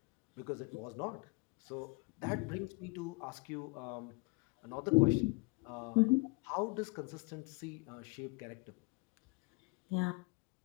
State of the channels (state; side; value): quieter; right; 27.7 dB